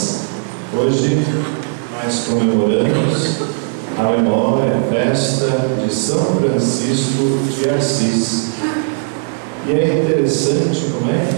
hoje nós comemoramos a memória, a festa de São Francisco de Assis. E é interessante como é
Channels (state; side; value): silent; left; digital silence